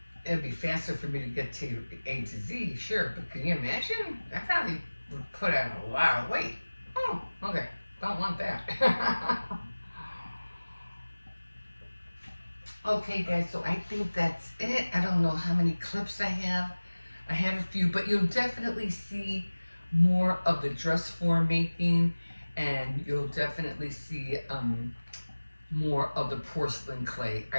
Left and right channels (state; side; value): inverted; both; correlation -1.00